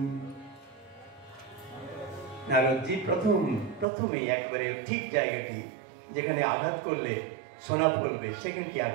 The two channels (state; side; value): drops out; left; at 3.9 s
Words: নারদজি প্রথমেই একবারে ঠিক জায়গাটি যেখানে আঘাত করলে সোনা ফলবে সেখানটি